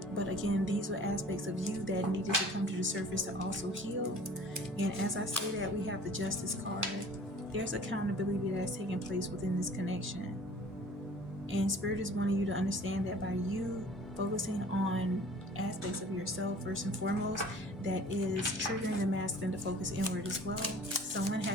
But again, these were aspects of you that needed to come to the surface to also heal. And as I say that, we have the Justice card. There's accountability that's taking place within this connection. And Spirit is wanting you to understand that by you focusing on aspects of yourself first and foremost, that is triggering the masculine to focus inward as well. Someone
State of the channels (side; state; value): both; normal; correlation 0.47